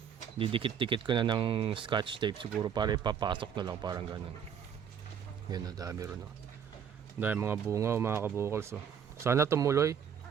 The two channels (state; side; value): quieter; left; 7.9 dB